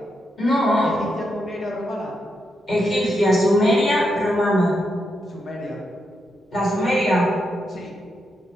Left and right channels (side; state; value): both; normal; correlation 0.83